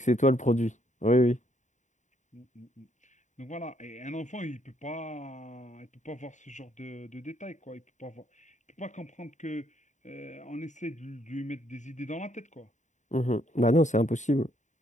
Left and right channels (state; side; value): late; right; 0.35 ms